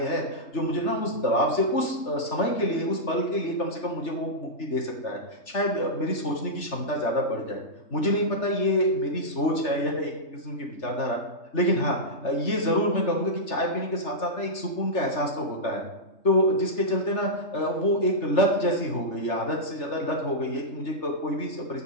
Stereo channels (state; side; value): late; right; 3.4 ms